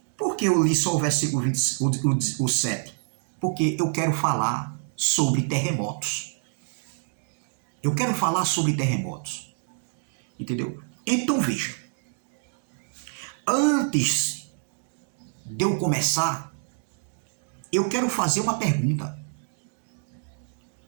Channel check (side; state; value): left; silent; 60 dB below the other